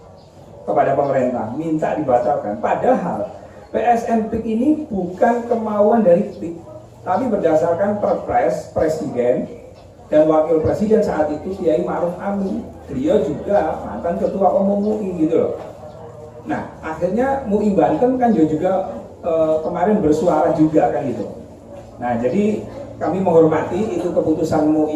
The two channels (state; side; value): identical; both; correlation 1.00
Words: kepada pemerintah, minta dibatalkan. Padahal PSN PIK ini bukan kemauan dari PIK, tapi berdasarkan Perpres Presiden dan Wakil Presiden saat itu Kiai Ma'ruf Amin. Beliau juga mantan Ketua Umum MUI gitu loh. Nah, akhirnya MUI Banten kan juga kemarin bersuara juga kan gitu. Nah, jadi kami menghormati itu keputusan